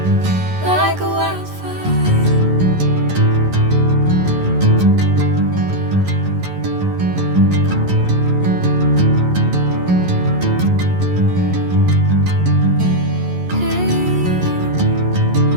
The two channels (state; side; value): late; left; 11 ms